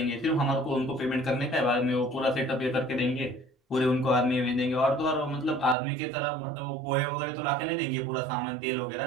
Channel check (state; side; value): drops out; left; at 5.8 s